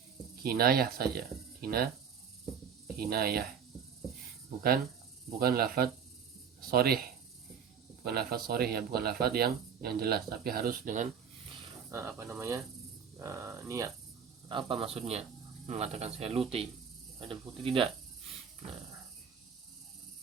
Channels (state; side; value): quieter; left; 7.1 dB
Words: kinayah saja, kinayah, bukan lafaz sharih, ya, bukan lafaz yang jelas, tapi harus dengan niat. Apa maksudnya mengatakan saya Luti, ada bukti tidak? Nah,